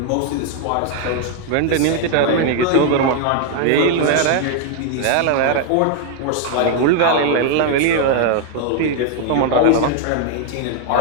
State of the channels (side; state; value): both; different; correlation 0.00